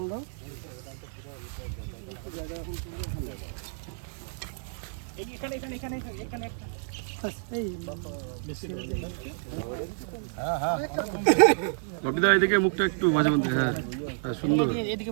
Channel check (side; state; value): left; silent; digital silence